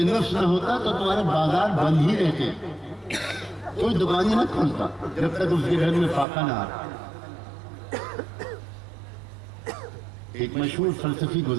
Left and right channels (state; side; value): drops out; left; at 6.2 s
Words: نفس نہ ہوتا تو تمہارے بازار بند ہی رہتے، کوئی دکان ہی نہ کھولتا جب تک اس کے گھر میں فاقہ نہ آتا۔ ایک مشہور فلسفی